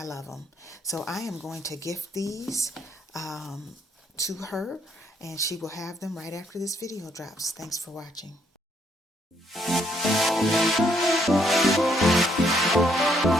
love them. So I am going to gift these to her, and she will have them right after this video drops. Thanks for watching.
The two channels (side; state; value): both; normal; correlation 0.70